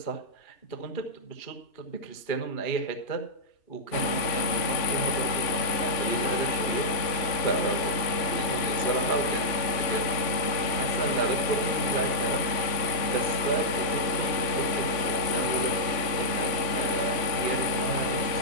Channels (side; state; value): right; late; 3.5 ms